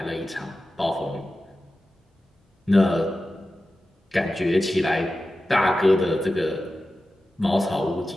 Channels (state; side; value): normal; both; correlation 0.94